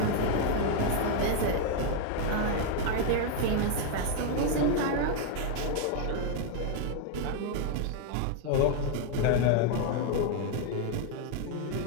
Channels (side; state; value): both; different; correlation 0.00